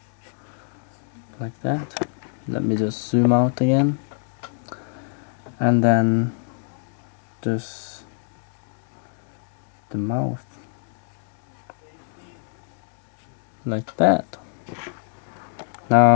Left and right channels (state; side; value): silent; right; 55 dB below the other